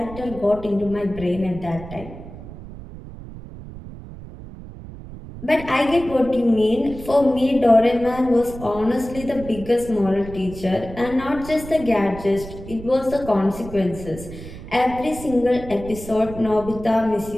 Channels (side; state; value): right; noise; rumble, 14 dB below the sound